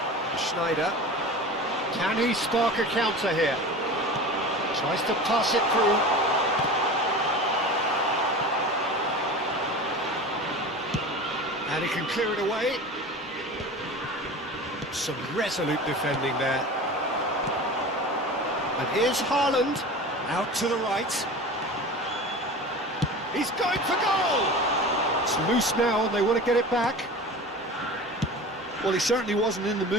Schneider. Can he spark a counter here? Tries to pass it through. And he can clear it away. Some resolute defending there. And here's Haaland, out to the right. He's going for goal! It's loose now and they want to get it back. Well, he certainly wasn't in the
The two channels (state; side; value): normal; both; correlation 0.34